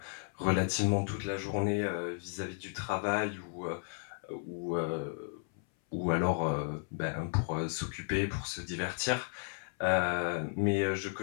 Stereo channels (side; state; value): right; silent; 55 dB below the other